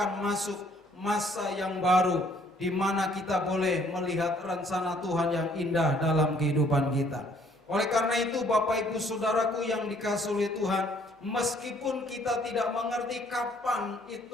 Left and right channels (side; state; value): both; normal; correlation 0.62